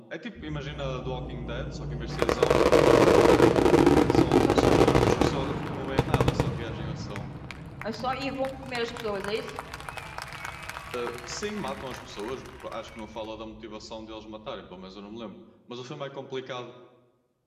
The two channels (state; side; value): identical; both; correlation 1.00